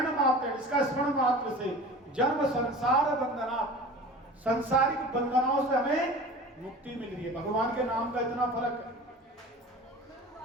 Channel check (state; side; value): normal; both; correlation 0.38